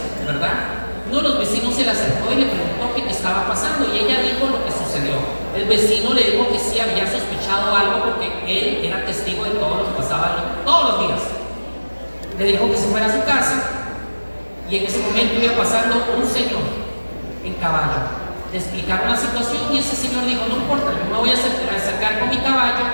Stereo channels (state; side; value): inverted; both; correlation -1.00